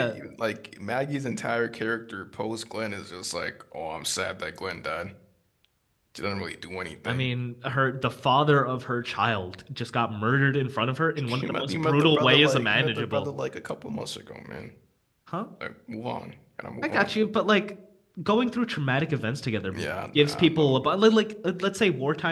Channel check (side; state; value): both; identical; correlation 1.00